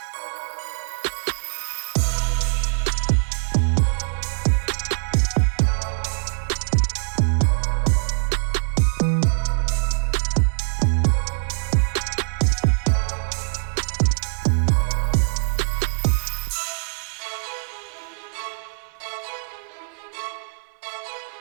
lay it on top of the brown sugar and butter. Okay, it looks a little oversized. Okay, and now we're going to add half of the apples.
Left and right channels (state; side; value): silent; left; 61 dB below the other